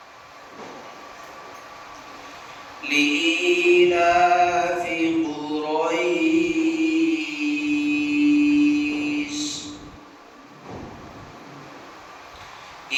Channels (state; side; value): identical; both; correlation 1.00